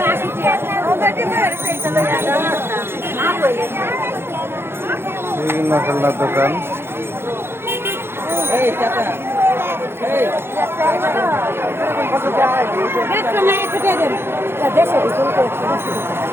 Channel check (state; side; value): late; left; 0.11 ms